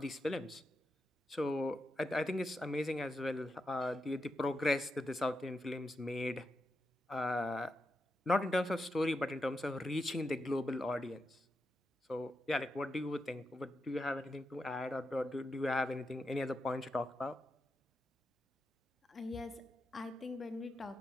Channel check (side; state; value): both; normal; correlation 0.87